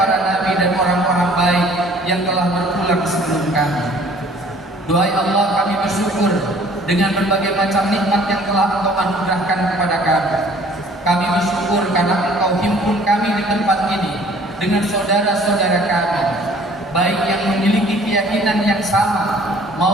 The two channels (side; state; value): both; normal; correlation 0.55